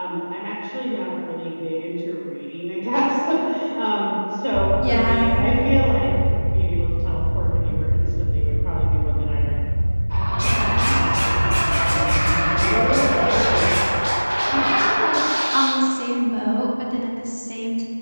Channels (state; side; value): inverted; both; correlation -1.00